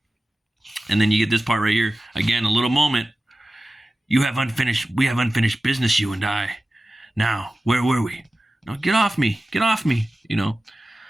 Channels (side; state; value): both; normal; correlation 0.95